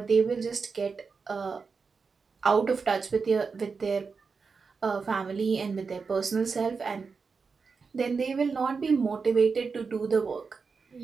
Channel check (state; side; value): quieter; left; 5.0 dB